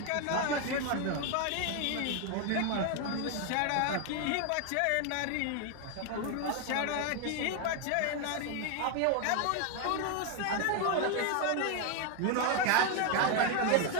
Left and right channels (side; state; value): both; different; correlation 0.01